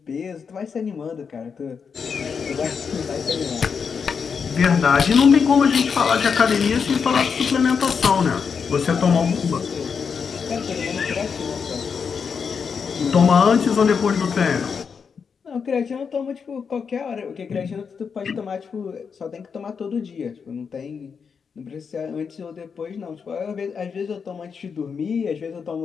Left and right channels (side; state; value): right; quieter; 6.1 dB